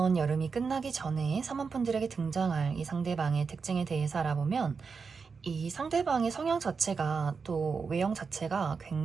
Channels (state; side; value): quieter; left; 5.3 dB